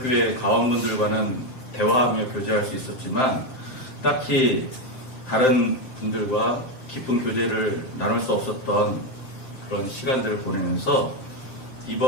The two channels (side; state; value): right; late; 7.7 ms